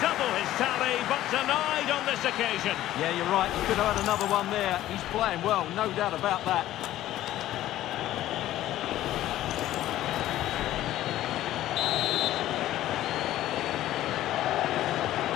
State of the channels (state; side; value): quieter; right; 14.0 dB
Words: his tally, but denied on this occasion. Yeah, you're right. He could have had another one there. He's playing well, no doubt about that.